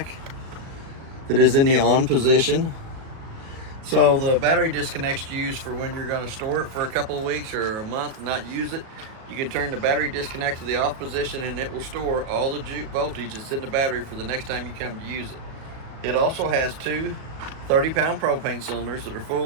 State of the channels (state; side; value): late; left; 37 ms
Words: that is in the on position. So the battery disconnect's used for when you're going to store it for a couple of weeks or a month and not use it. You can turn the battery disconnect to the off position and it will store all the voltage that's in the battery for the next time you come to use it. It also has two 30-pound propane cylinders that are